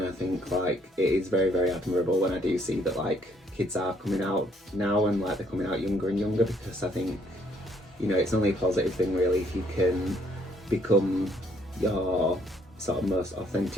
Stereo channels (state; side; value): normal; both; correlation 0.67